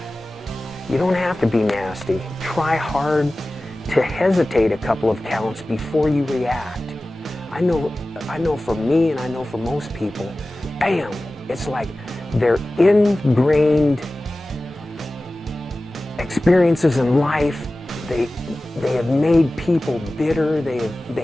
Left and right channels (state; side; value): normal; both; correlation 0.96